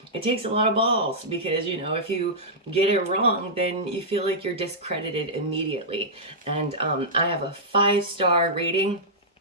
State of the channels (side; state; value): both; normal; correlation -0.12